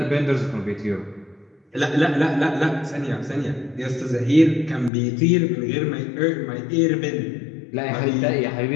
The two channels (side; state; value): right; drops out; at 4.9 s